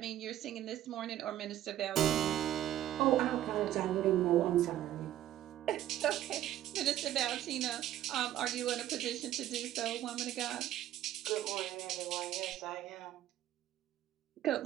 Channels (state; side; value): quieter; left; 12.7 dB